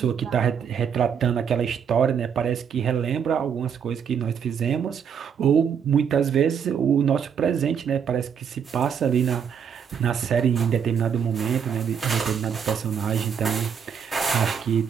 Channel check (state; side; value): quieter; left; 7.5 dB